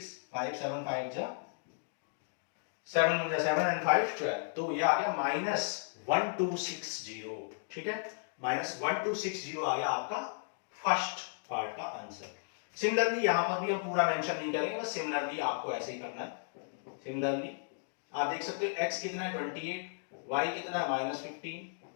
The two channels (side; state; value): right; silent; digital silence